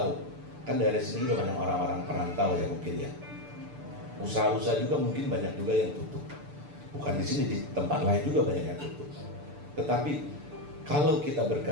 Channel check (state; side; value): late; left; 6.8 ms